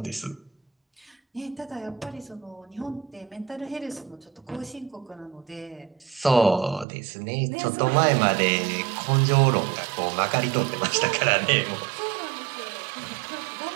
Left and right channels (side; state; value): left; drops out; at 6.9 s